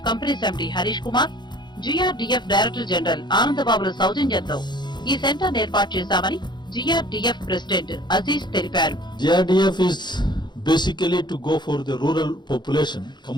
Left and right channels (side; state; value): right; late; 0.21 ms